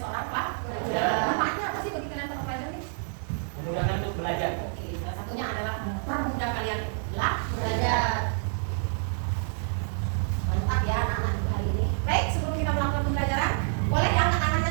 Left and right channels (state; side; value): silent; left; 59 dB below the other